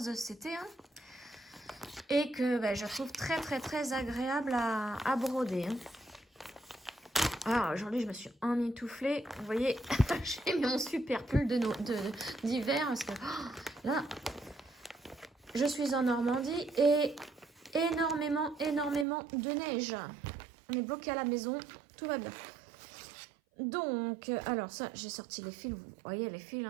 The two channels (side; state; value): left; drops out; at 19.1 s